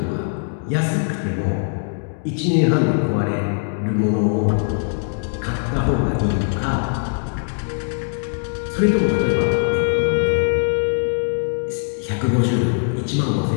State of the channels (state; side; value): silent; right; digital silence